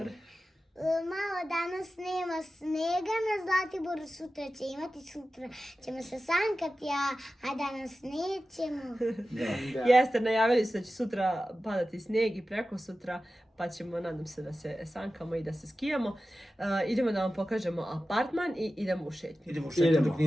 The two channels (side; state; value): both; normal; correlation 0.94